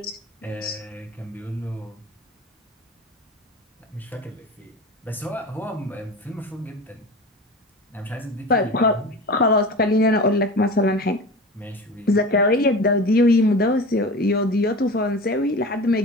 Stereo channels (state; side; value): normal; both; correlation 0.33